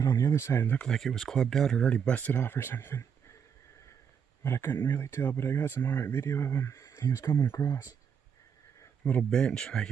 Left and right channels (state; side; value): quieter; left; 7.3 dB